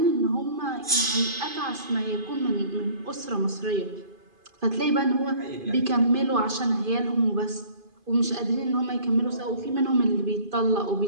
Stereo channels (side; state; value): left; late; 2.5 ms